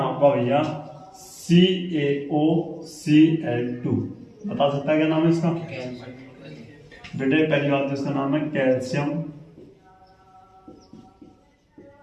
भैया CaOCl2, बता सकता है क्या नाम है इसका बेटे, पहली बात तो इसका नाम है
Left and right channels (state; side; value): identical; both; correlation 1.00